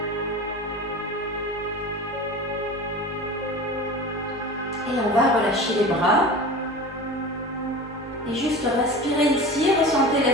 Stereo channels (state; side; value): normal; both; correlation 0.34